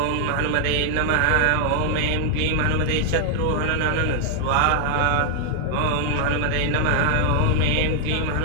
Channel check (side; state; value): both; different; correlation 0.00